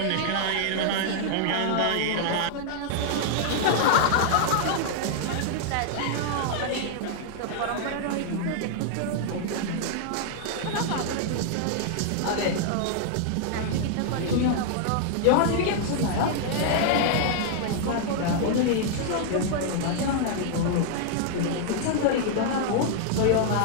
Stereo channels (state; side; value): different; both; correlation -0.01